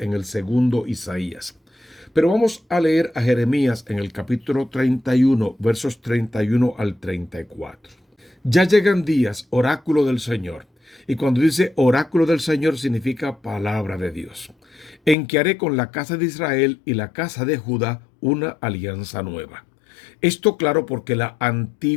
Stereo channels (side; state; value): right; drops out; at 15.2 s